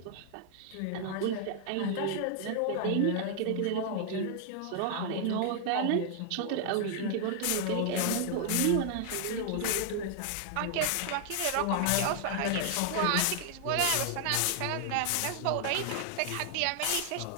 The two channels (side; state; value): both; different; correlation 0.00